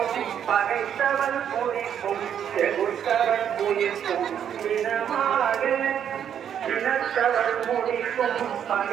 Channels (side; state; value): left; quieter; 9.0 dB